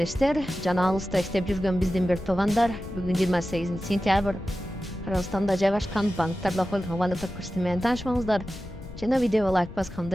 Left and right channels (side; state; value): left; noise; rumble, 14 dB below the sound